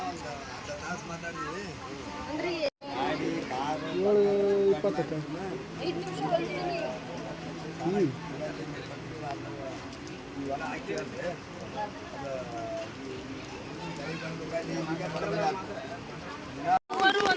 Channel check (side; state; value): both; identical; correlation 1.00